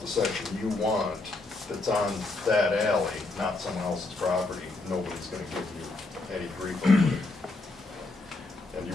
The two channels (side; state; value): right; quieter; 3.3 dB